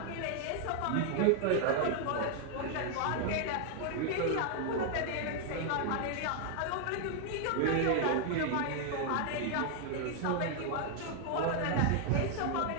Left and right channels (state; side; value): different; both; correlation 0.00